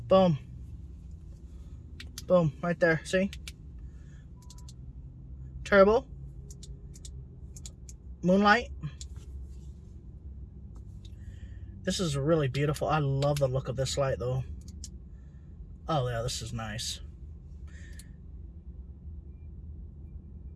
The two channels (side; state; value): both; identical; correlation 1.00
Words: boom, boom, right there. See, turbo, moonlight. This is really beautiful. I love the look of this light, though. Oh yeah, this is nice.